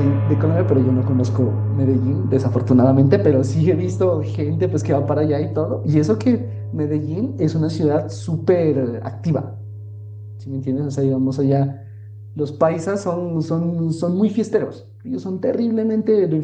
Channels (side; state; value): both; identical; correlation 1.00